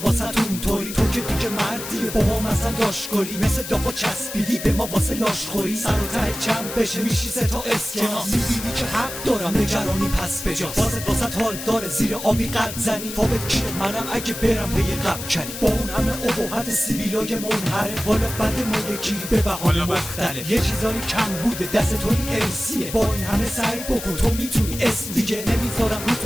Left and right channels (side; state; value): left; noise; hiss, 9 dB below the sound